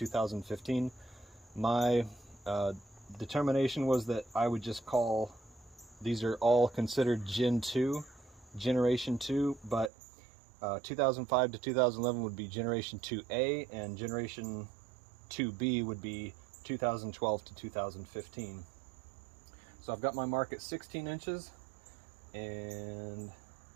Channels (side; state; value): left; drops out; at 9.9 s